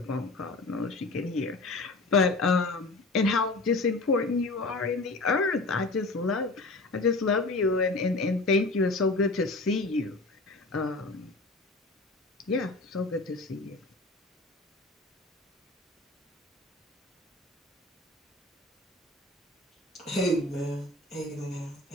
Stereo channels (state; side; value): quieter; right; 3.1 dB